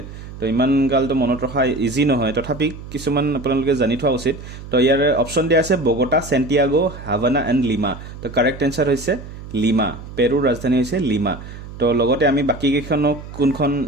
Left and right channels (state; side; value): noise; right; hum, 13 dB below the sound